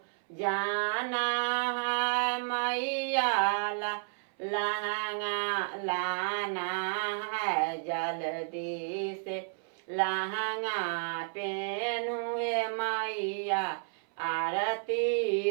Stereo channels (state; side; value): silent; left; 57 dB below the other